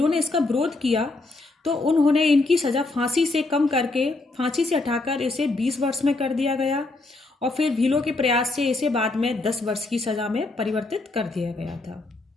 ने इसका विरोध किया तो उन्होंने इनकी सजा फांसी से कम करके, फांसी से हटाकर इसे 20 वर्ष में कर दिया गया और फिर भीलों के प्रयास से इसे बाद में 10 वर्ष की सजा में परिवर्तित कर दिया गया था।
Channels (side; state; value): right; quieter; 3.2 dB